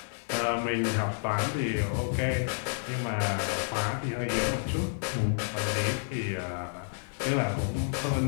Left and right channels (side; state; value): right; silent; digital silence